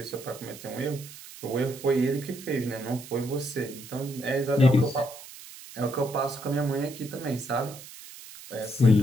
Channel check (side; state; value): right; noise; hiss, 16 dB below the sound